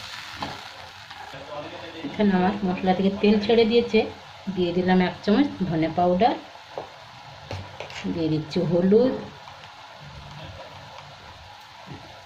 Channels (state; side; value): identical; both; correlation 1.00